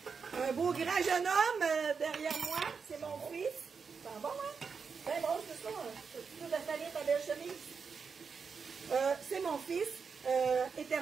grand jeune homme derrière moi. C'est mon fils. C'est bon, hein? Ben bon, c'est ça. Tu peux installer ta belle chemise. C'est mon fils.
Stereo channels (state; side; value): quieter; left; 5.6 dB